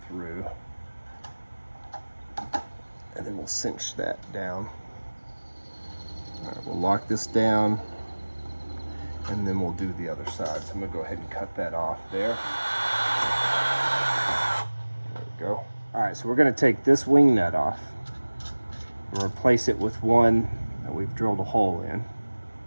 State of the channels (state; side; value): inverted; both; correlation -1.00